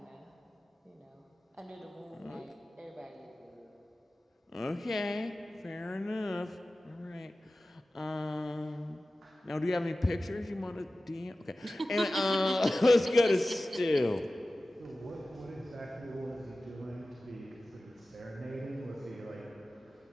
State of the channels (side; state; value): both; normal; correlation 0.96